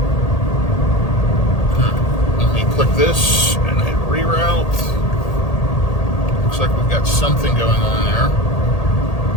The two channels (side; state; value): right; late; 1.8 ms